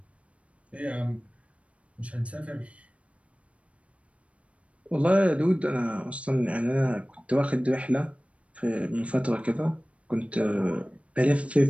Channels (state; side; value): late; left; 0.063 ms